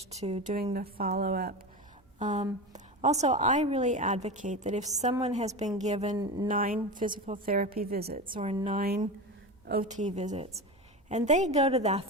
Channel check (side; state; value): both; normal; correlation 0.24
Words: to doing the follow-up. Also, I really advocate that if someone has been given 9 physical therapy visits or 9 OT visits, and they go to that